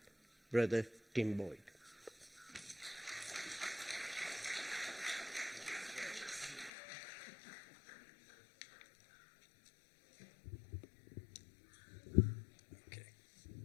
Brother Tim Boyd.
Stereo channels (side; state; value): right; drops out; at 6.7 s